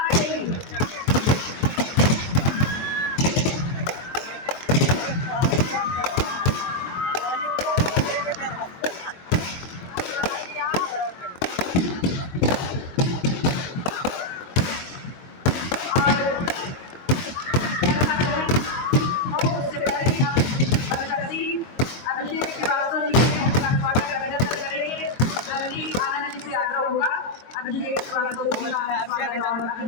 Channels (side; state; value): right; late; 24 ms